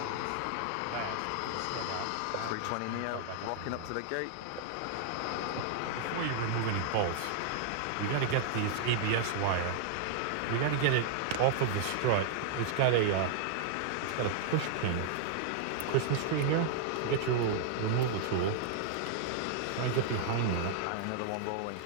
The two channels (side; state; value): both; different; correlation -0.01